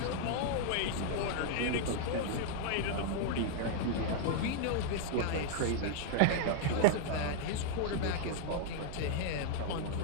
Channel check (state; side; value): different; both; correlation 0.00